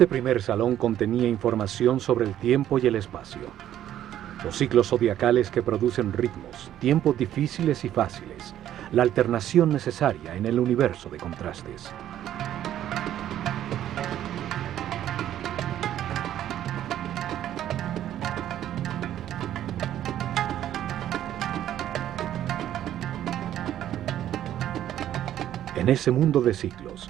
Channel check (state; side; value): quieter; left; 11.6 dB